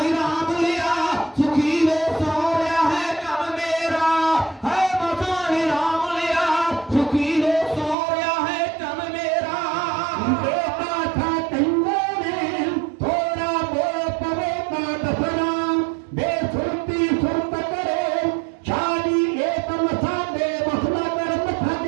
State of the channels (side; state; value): left; drops out; at 8.0 s